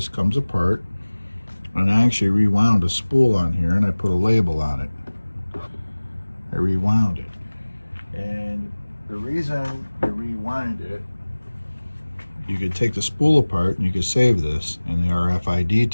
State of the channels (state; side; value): inverted; both; correlation -1.00